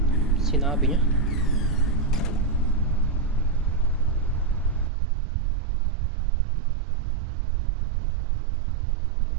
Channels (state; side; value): drops out; left; at 4.9 s